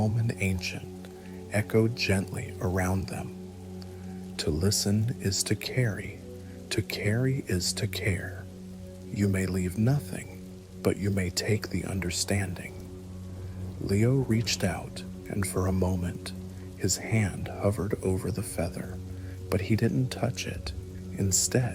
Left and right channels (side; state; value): both; identical; correlation 1.00